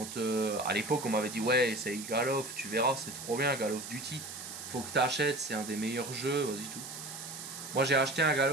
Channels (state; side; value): noise; right; hiss, 10 dB below the sound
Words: à l'époque on m'avait dit ouais, essaye Call of, tu verras, c'est trop bien Call of Duty. Faut que t'achètes, c'est un des meilleurs jeux, vas-y tout. Moi j'ai acheté un Call